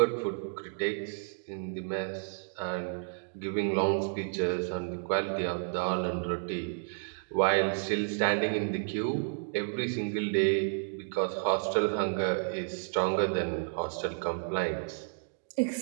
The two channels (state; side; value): silent; left; digital silence